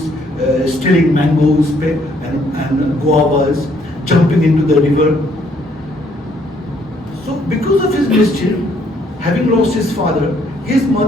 stealing mangoes and guavas, jumping into the river. So because of his mischief, having lost his father, his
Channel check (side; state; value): both; normal; correlation 0.67